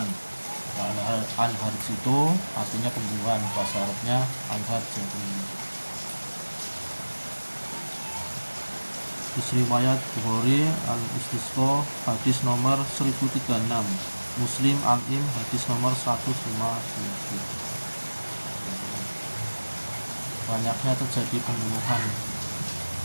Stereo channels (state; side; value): inverted; both; correlation -1.00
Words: Al-harj itu artinya pembunuhan, bahasa Arabnya al-harj. Riwayat Bukhari al-Istisqa hadis nomor 1036, Muslim al-Im hadis nomor 157. Banyaknya terjadi pembunuhan.